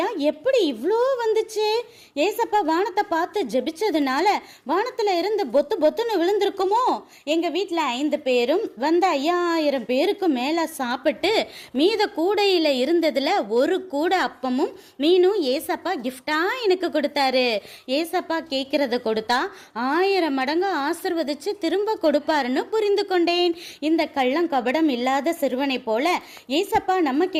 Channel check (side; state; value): both; identical; correlation 1.00